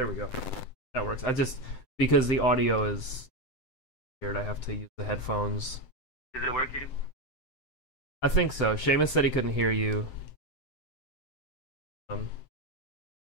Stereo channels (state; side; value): late; right; 7.7 ms